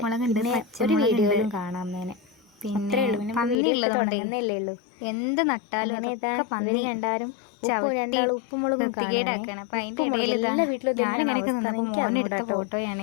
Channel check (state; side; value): drops out; right; at 3.6 s